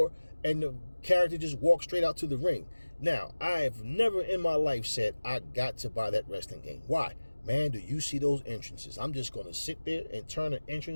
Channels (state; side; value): inverted; both; correlation -1.00